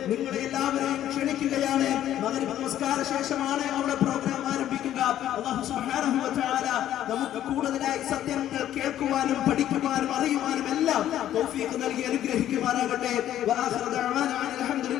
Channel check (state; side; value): quieter; right; 11.9 dB